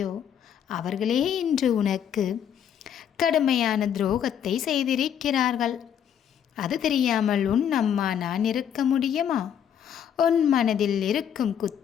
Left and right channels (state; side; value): quieter; right; 9.0 dB